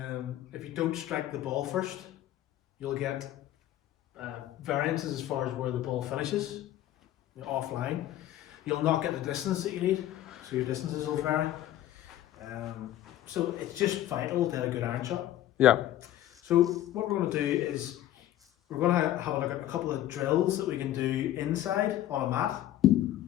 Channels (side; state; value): right; quieter; 13.1 dB